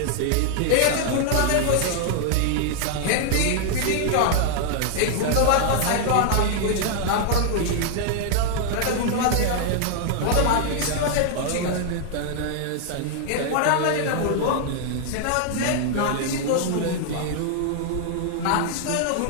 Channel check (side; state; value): both; different; correlation 0.00